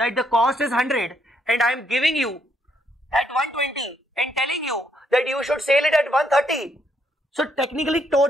the cost is 100 and I am giving you at 120 and telling you that you should sell it at 130. So technically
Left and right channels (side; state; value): both; normal; correlation 0.73